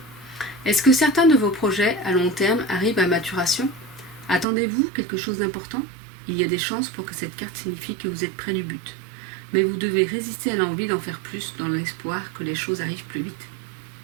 Est-ce que certains de vos projets à long terme arrivent à maturation? Attendez-vous quelque chose d'important? Il y a des chances pour que cette carte signifie que vous êtes près du but. Mais vous devez résister à l'envie d'en faire plus dans l'espoir que les choses arrivent plus vite.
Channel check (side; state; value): left; drops out; at 4.5 s